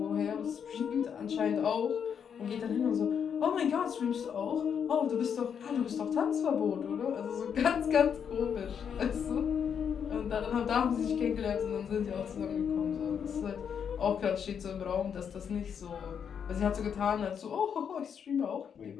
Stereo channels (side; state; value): right; quieter; 7.5 dB